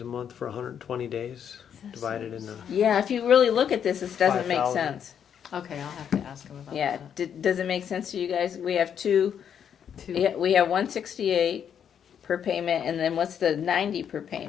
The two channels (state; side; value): quieter; right; 8.4 dB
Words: a month for 120 days, divided into. Yeah, if you really look at this, this doesn't make 5,000. sense. Okay, I'll have to ask him about Yeah, that. does it make sense to you guys? We have two, Two. yeah, we have 168 per payment, and then what's the 90 per